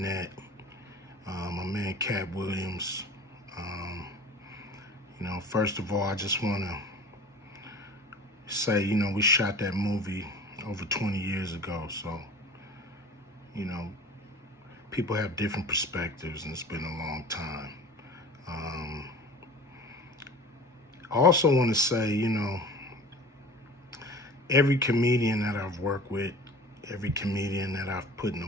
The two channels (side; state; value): both; normal; correlation 0.41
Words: My man Katt Williams. You know, first of all, I just want to say, you know, we shot that movie over 20 years ago. So, you know, people have different perspectives, and it's been a long time. I also want to say, you know, every comedian that I've worked with, every comedian that I've put in a